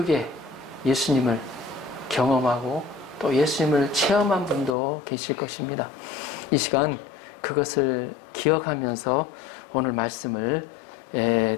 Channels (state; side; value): drops out; right; at 4.8 s